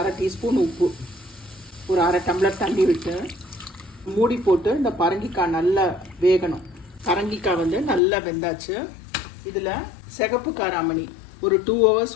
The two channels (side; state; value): right; drops out; at 8.0 s